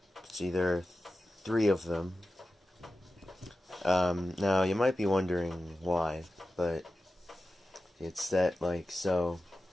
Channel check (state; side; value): normal; both; correlation 0.94